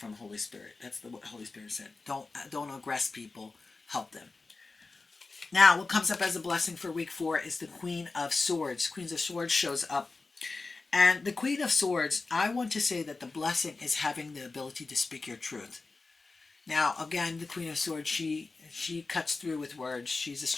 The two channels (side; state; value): right; quieter; 3.8 dB